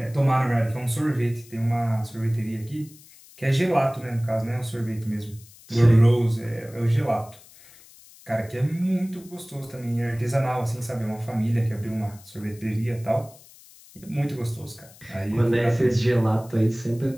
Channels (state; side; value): noise; left; hiss, 23 dB below the sound